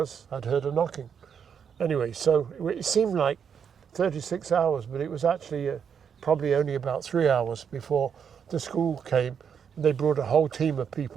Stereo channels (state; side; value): quieter; left; 7.3 dB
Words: I'd heard her knocking. Anyway, so it seemed like 36 hours, but it was actually probably only about 3 hours before the school came. They brought a whole team of